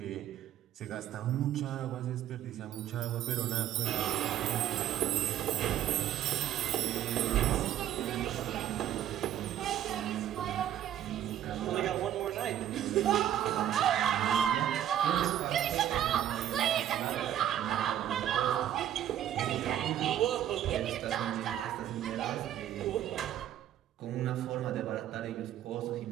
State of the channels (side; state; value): left; quieter; 11.2 dB